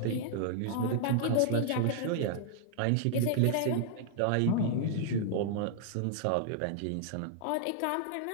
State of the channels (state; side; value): different; both; correlation -0.01